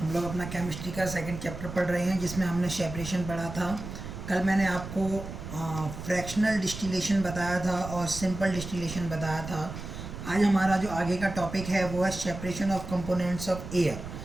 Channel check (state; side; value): noise; right; rumble, 9 dB below the sound